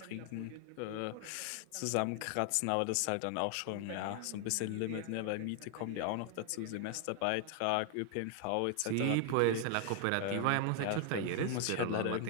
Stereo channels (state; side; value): different; both; correlation 0.00